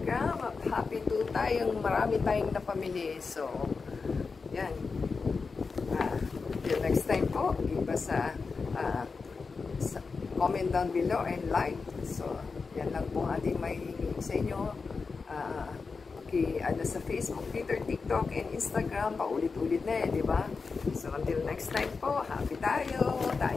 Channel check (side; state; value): right; quieter; 4.7 dB